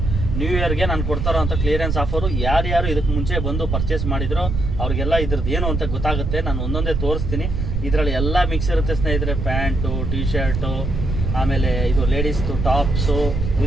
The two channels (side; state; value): right; noise; rumble, 2 dB below the sound